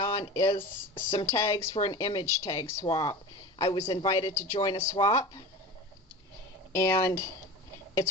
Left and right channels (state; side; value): normal; both; correlation 0.32